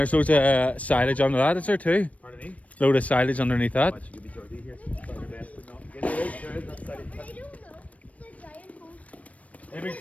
loads of silage under that, is there too? Pardon me? Load of silage underneath that. Watch, you be dirty here. Try your best, but not. Get there is, that's silage. Where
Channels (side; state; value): right; late; 0.067 ms